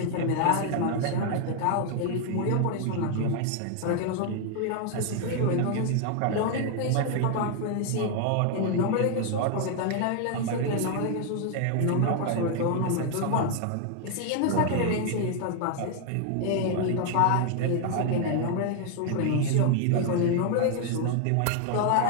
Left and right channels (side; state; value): both; different; correlation 0.00